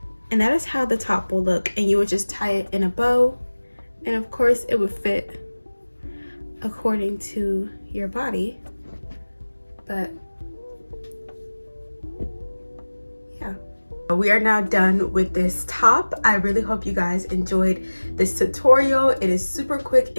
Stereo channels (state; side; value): inverted; both; correlation -1.00